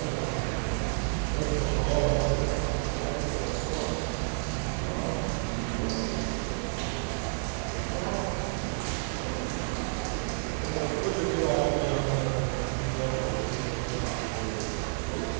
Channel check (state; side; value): silent; left; 58 dB below the other